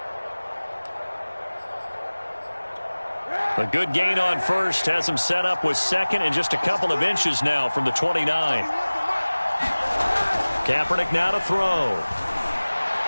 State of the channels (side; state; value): both; inverted; correlation -1.00